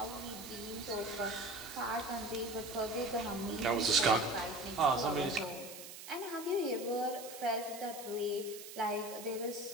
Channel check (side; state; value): right; noise; hiss, 12 dB below the sound